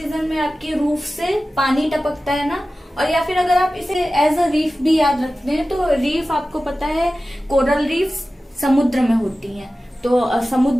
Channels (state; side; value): normal; both; correlation 0.95